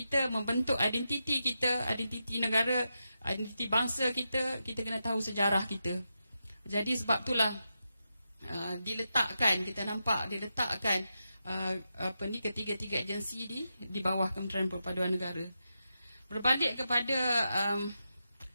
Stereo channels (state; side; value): inverted; both; correlation -0.87